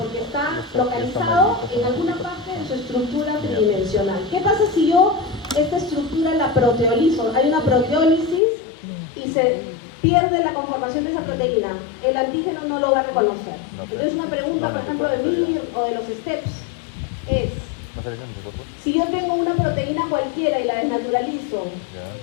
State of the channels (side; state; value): right; drops out; at 8.4 s